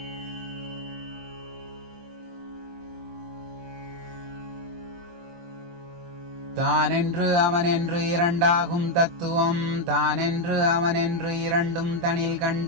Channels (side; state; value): left; late; 23 ms